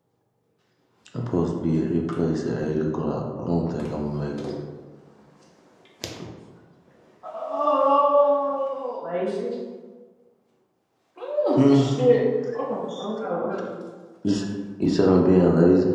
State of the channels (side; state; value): both; identical; correlation 1.00